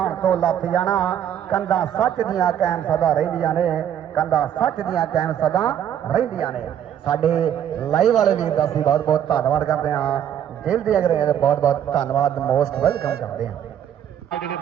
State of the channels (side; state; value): left; quieter; 9.9 dB